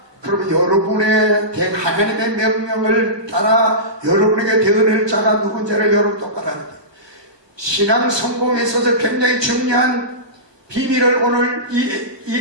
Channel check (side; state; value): left; late; 1.2 ms